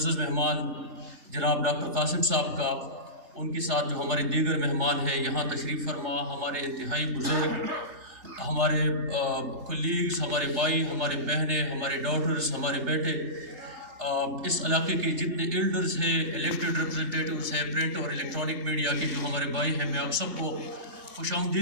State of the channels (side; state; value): left; late; 3.4 ms